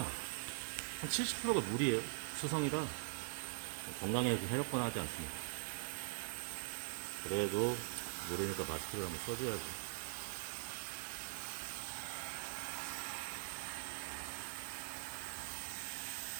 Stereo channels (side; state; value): left; silent; digital silence